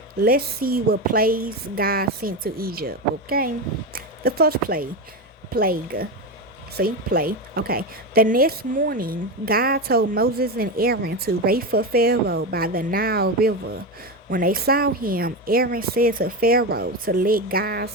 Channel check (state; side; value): normal; both; correlation 0.17